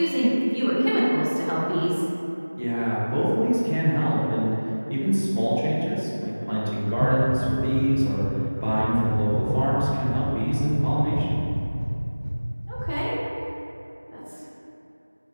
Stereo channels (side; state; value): both; inverted; correlation -1.00